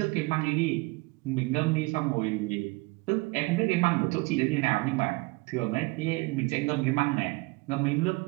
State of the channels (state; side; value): quieter; left; 25.2 dB